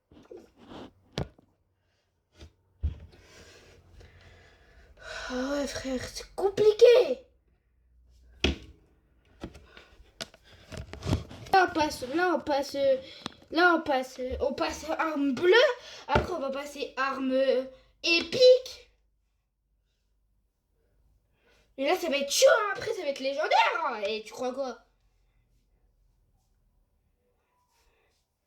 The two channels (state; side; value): identical; both; correlation 1.00